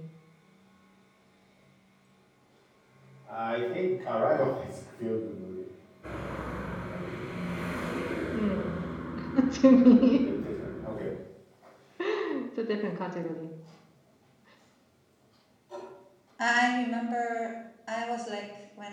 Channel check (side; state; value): both; identical; correlation 1.00